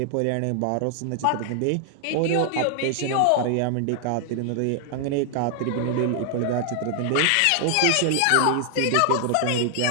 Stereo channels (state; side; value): different; both; correlation 0.00